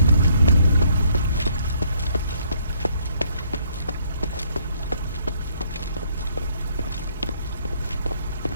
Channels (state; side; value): inverted; both; correlation -0.66